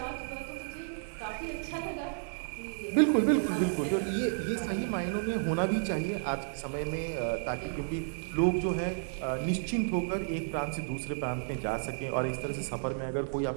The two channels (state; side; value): silent; left; digital silence